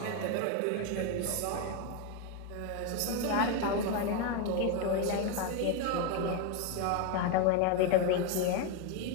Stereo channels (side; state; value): both; different; correlation 0.02